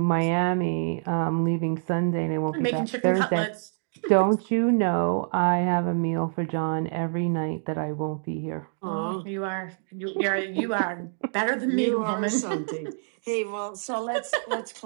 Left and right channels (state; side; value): silent; left; digital silence